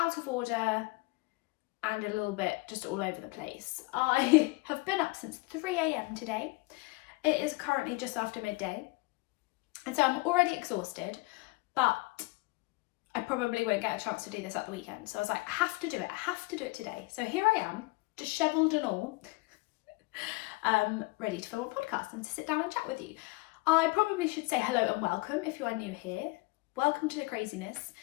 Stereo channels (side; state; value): right; quieter; 24.4 dB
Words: of order, and a little bit just all over the place. I have been up since 3 a.m. today. It is currently just after midday, and so I'm already exhausted, but I probably won't get a chance to do this at the weekend. So I was like, I have to do it today. So here I am, dishevelled and all, ready to film a podcast and to sit down and chat with you. I probably should say hello and welcome if you are new here. Welcome to the craziness.